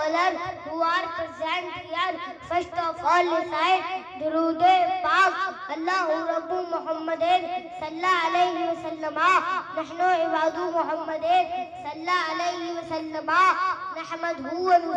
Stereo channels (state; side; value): identical; both; correlation 1.00